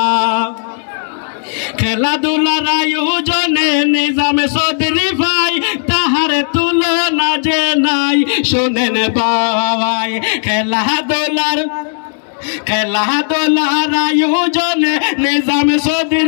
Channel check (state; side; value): silent; right; digital silence